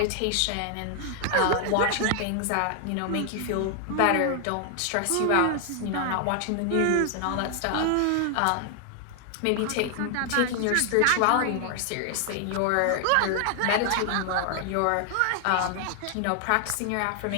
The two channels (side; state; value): both; different; correlation 0.00